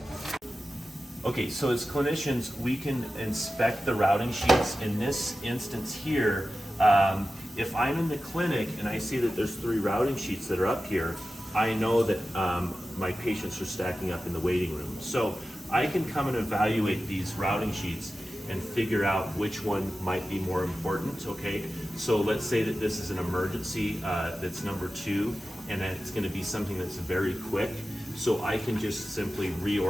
Okay. Okay, so as clinicians, we can inspect the routing sheets. In this instance here, if I'm in the clinic and I see that there's 3 routing sheets that are up here, I know that my patients are stacking up in the waiting room. So I can come and evaluate these routing sheets and figure out which one might be more important, okay? So let's say that this is an emergency that's number 2, and that it's gonna be something that's very quick. So I can just simply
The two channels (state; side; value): normal; both; correlation 0.94